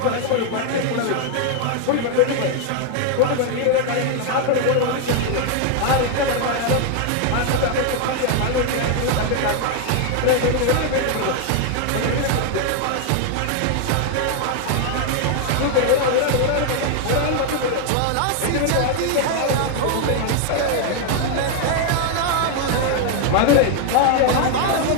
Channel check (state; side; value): different; both; correlation 0.00